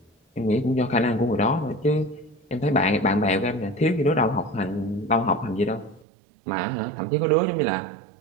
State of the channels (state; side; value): drops out; left; at 6.1 s